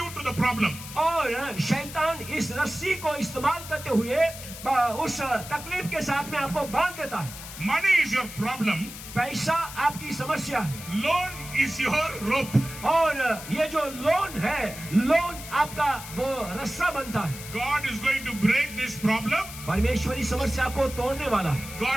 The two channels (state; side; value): noise; left; hiss, 12 dB below the sound